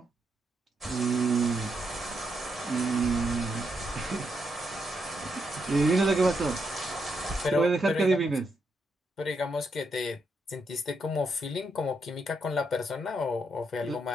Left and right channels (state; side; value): normal; both; correlation 0.80